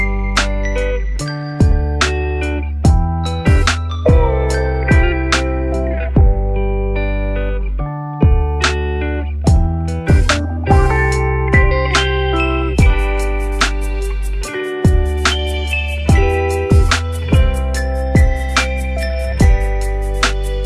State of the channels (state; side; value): identical; both; correlation 1.00